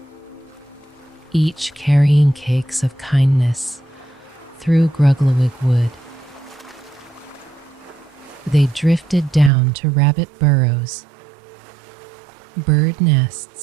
each carrying cakes of kindness through Grugglewig wood. They drifted down to rabbit burrows, bird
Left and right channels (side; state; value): left; drops out; at 9.5 s